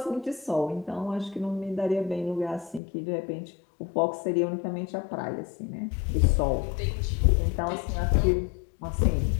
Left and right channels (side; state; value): right; drops out; at 2.8 s